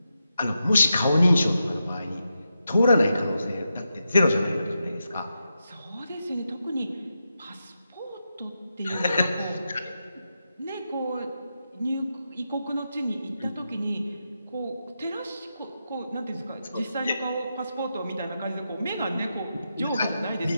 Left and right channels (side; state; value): both; inverted; correlation -0.87